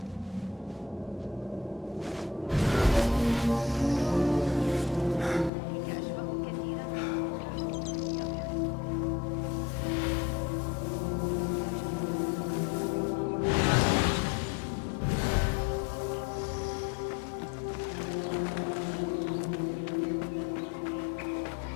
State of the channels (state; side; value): drops out; right; at 5.5 s